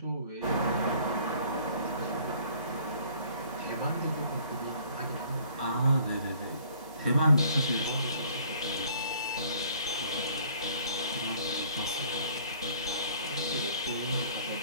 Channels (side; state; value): both; inverted; correlation -0.56